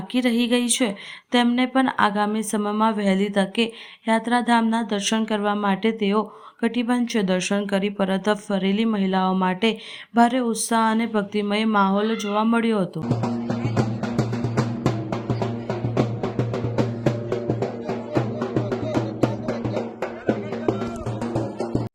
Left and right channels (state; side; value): identical; both; correlation 1.00